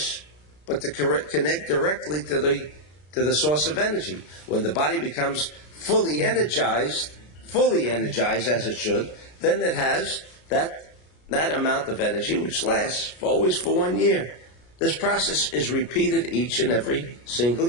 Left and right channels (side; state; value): right; late; 33 ms